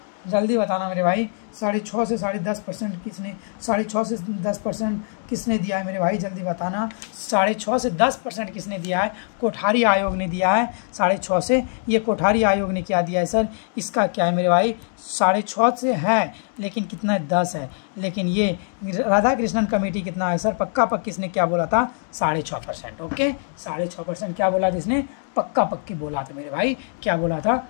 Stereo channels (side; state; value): right; silent; 63 dB below the other